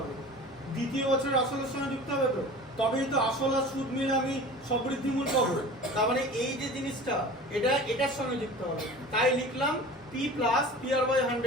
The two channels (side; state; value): both; normal; correlation 0.39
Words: দ্বিতীয় বছরের আসলের সঙ্গে যুক্ত হবে তো, তবেই তো আসল আর সুদ মিলে আমি সবৃদ্ধিমূল পাবো। তার মানে এই যে জিনিসটা এটা এটার সঙ্গে যুক্ত হবে, তাই লিখলাম P plus P R by